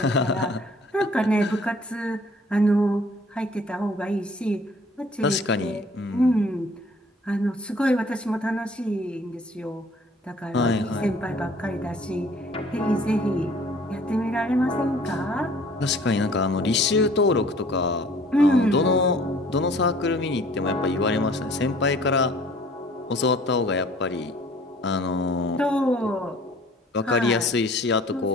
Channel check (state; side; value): normal; both; correlation 0.53